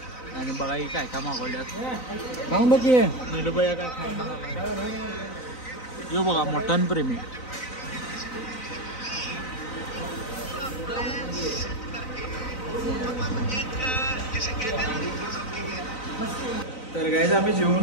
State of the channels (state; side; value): late; right; 3.9 ms